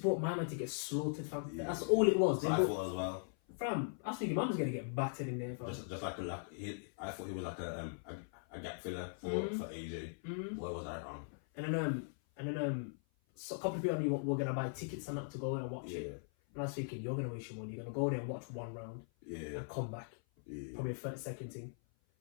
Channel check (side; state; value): right; silent; 51 dB below the other